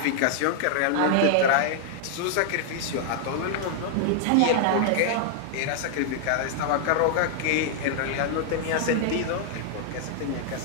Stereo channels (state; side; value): different; both; correlation 0.00